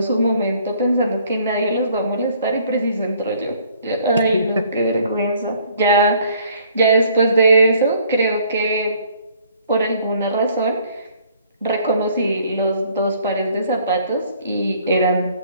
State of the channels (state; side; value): inverted; both; correlation -0.60